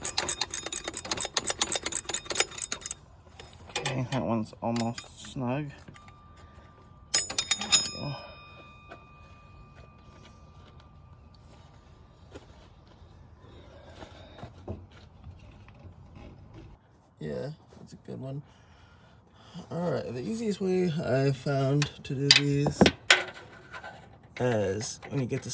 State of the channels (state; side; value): identical; both; correlation 1.00